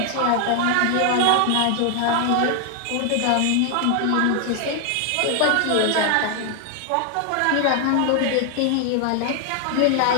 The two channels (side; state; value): both; different; correlation 0.00